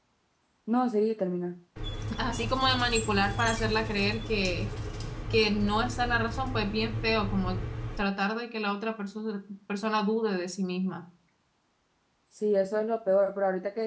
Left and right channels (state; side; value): identical; both; correlation 1.00